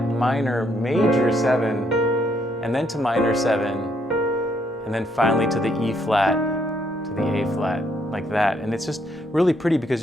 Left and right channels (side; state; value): both; normal; correlation 0.72